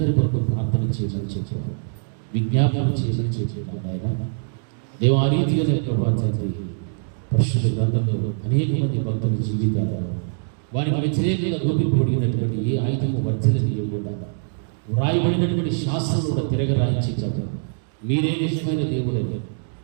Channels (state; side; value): silent; left; digital silence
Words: కొరకు ప్రార్థన చేయమని చెప్పాము, విజ్ఞాపన చేయమని చెప్పాము. ఆయన దేవ ఆ రీతిగానే ప్రభా తండ్రి పరిశుద్ధ గ్రంథంలో అనేక మంది భక్తుల జీవితాలు వారికి వ్యతిరేకంగా రూపింపబడినటువంటి ఏ ఆయుధము వర్తిల్లనివ్వకుండా వ్రాయబడినటువంటి శాస్త్రం కూడా తిరగరాయించి ప్రభు మీరే నిజమైన దేవుడని,